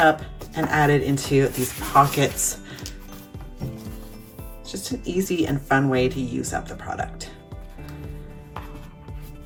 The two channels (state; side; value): identical; both; correlation 1.00